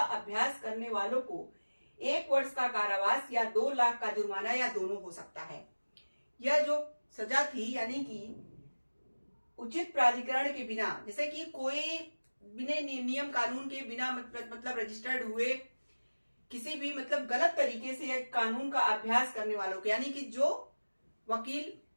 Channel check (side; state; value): both; inverted; correlation -1.00